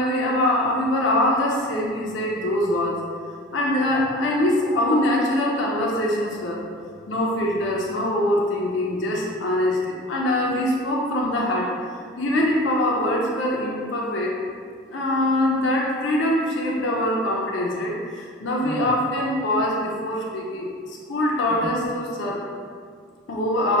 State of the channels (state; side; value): normal; both; correlation 0.36